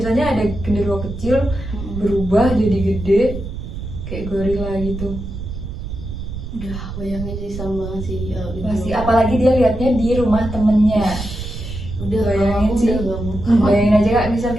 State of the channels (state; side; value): noise; right; rumble, 8 dB below the sound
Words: ada genderuwo kecil berubah jadi gede kayak gorila gitu. Udah bayangin sih sama banget sih Pasti, apalagi dia lihatnya di rumah temennya. Udah Bayangin sih. udah gak mau. Bayangin aja Kak, misal